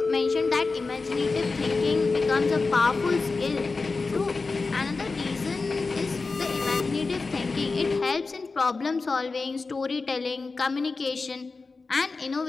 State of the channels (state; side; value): quieter; right; 4.0 dB